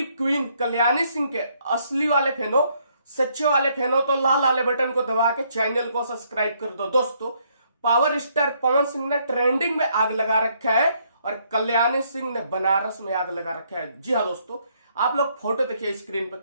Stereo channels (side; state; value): both; inverted; correlation -0.70